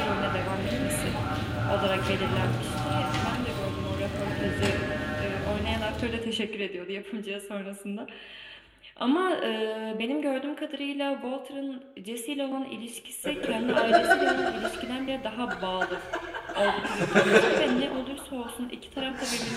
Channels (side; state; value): both; identical; correlation 1.00